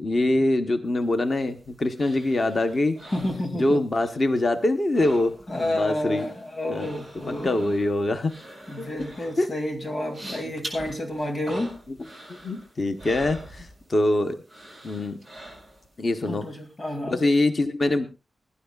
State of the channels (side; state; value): both; normal; correlation 0.92